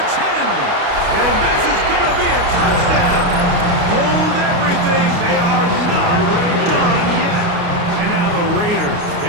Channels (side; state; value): left; late; 29 ms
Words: 10. And this is going to be a touchdown. Hold everything. They are not done yet. And now the Raiders